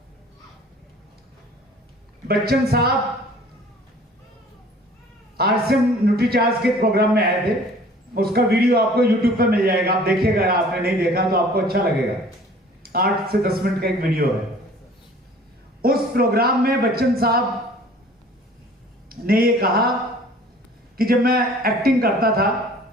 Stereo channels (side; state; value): both; normal; correlation 0.50